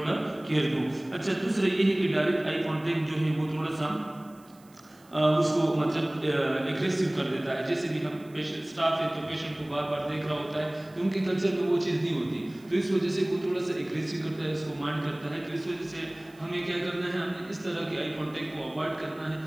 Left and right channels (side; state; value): right; noise; hiss, 28 dB below the sound